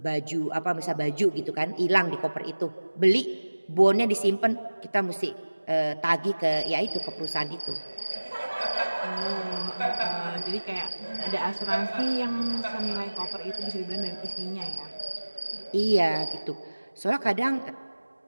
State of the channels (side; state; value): both; inverted; correlation -1.00